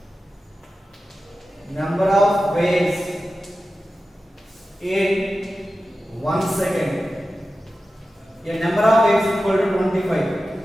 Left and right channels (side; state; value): both; normal; correlation 0.93